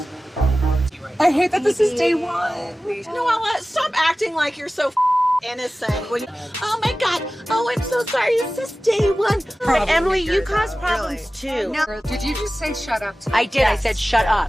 I hate that this is day one. Noella, stop acting like you're so innocent. Oh my God. Oh, I'm so sorry. It's just day one. But Emily, you cause problems too. No. Did you just say shut up? I did. I said shut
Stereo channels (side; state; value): both; normal; correlation 0.96